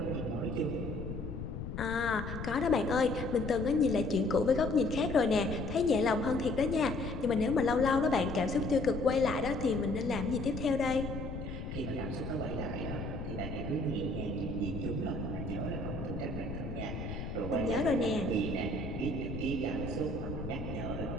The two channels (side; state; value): left; noise; rumble, 6 dB below the sound